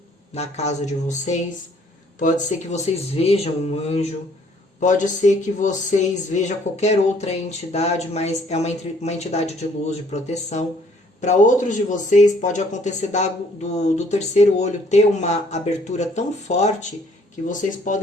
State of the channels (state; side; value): normal; both; correlation 0.62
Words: na casa de vocês. Pode ser que vocês vejam um anjo. Pode ser que vocês vejam qualquer outra entidade, mas é uma entidade de luz, de proteção. Para outros de vocês, pode acontecer do terceiro olho ter uma abertura tão forte que vocês